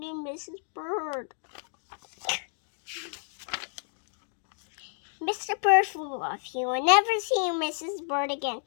Mrs. Bird. Mr. Bird flew off. He will never see Mrs. Bird again,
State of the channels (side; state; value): right; silent; 58 dB below the other